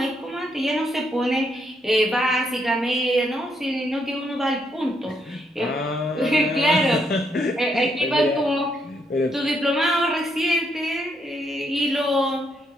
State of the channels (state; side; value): normal; both; correlation 0.75